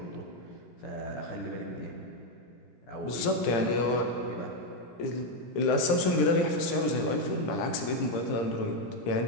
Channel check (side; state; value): right; late; 17 ms